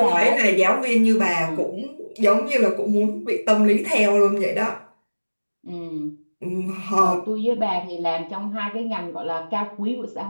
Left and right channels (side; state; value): both; inverted; correlation -1.00